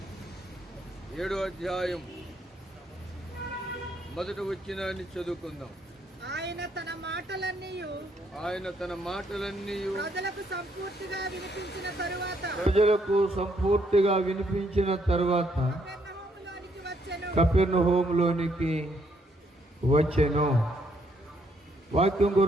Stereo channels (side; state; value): both; normal; correlation 0.72